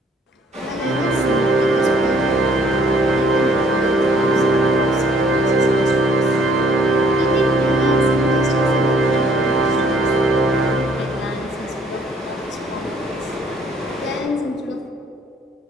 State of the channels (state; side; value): normal; both; correlation 0.62